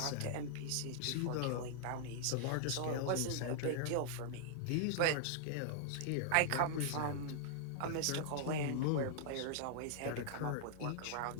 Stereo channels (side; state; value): both; different; correlation -0.01